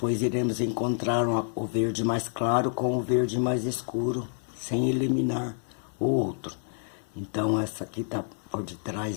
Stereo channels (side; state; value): right; silent; digital silence